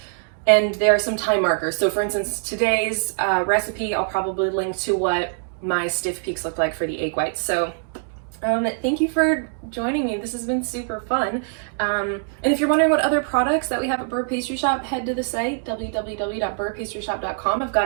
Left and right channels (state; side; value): silent; left; digital silence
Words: And there are some time markers. So for instance, today's recipe, I'll probably link to what my stiff peaks look like for the egg whites. So thank you for joining me. This has been super fun. And if you're wondering what other products that we have at Beurre Pastry Shop, head to the site, www.beurrepastryshop.com. I've got